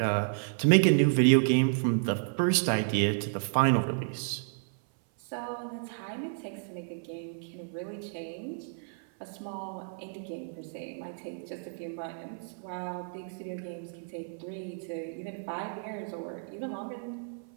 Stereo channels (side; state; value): left; silent; 57 dB below the other